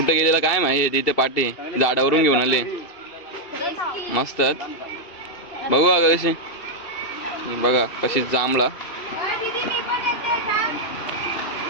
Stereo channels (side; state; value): right; late; 2.7 ms